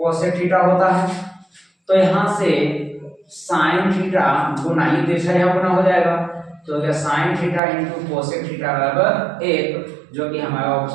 थीटा होता है। तो यहां से साइन थीटा गुना ही दिशा यहाँ गुना हो जाएगा, तो क्या sine theta into cosec theta बराबर 1, जो कि हमारा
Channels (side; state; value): left; drops out; at 7.6 s